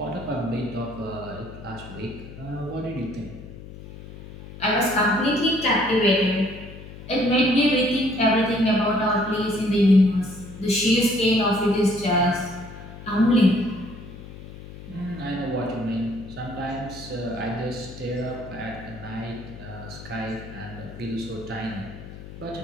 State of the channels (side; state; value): left; noise; hum, 14 dB below the sound